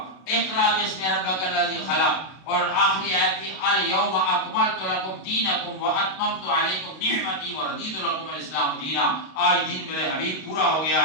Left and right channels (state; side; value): late; right; 32 ms